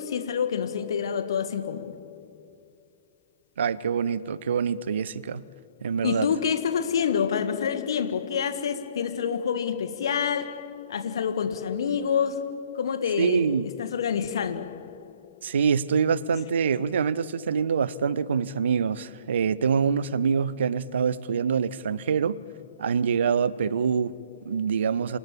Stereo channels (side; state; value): both; inverted; correlation -0.66